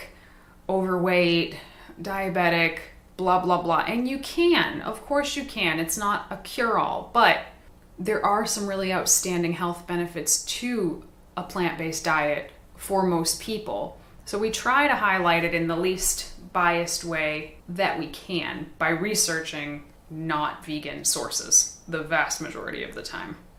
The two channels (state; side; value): identical; both; correlation 1.00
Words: overweight, diabetic, blah, blah, blah. And you can, of course you can. It's not a cure-all, but there are some really outstanding health benefits to a plant-based diet for most people. So we try to highlight it in the least biased way that we can by researching not vegan sources the vast majority of the time.